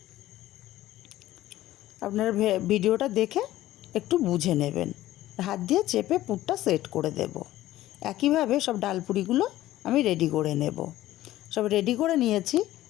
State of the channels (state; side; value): quieter; right; 14.9 dB